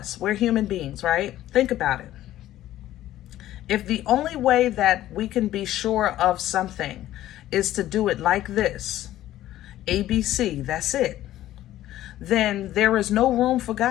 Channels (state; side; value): quieter; right; 13.8 dB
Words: we're human beings, right? Think about it. If the only way that we can be sure of something is to do it like this, ABC, that's it, then there is no room for